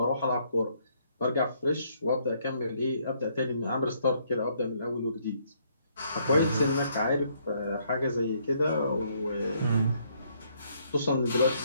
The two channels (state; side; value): inverted; both; correlation -0.69